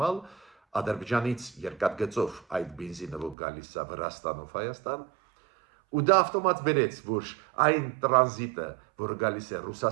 Ադրբեջանից երկաթգծով այդ բենզինը որ գալիս է Վրաստանով Հայաստան, ու դա ավտոմատ բերեց, որ այն տրանզիտը, որը գալիս է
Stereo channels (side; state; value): left; drops out; at 3.4 s